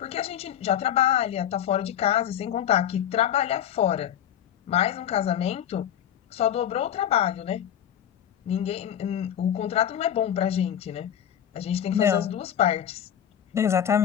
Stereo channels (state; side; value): quieter; right; 10.0 dB